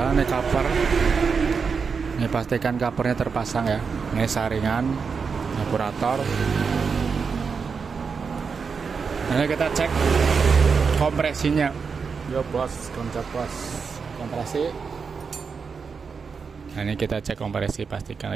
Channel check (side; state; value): left; quieter; 5.5 dB